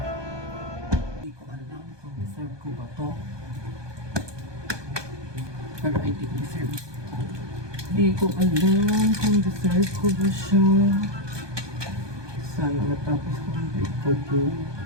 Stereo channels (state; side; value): late; left; 1.2 ms